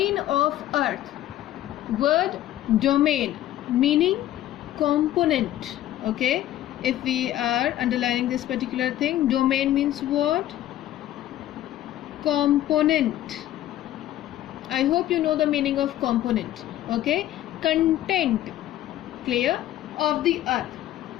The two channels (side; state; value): right; quieter; 13.3 dB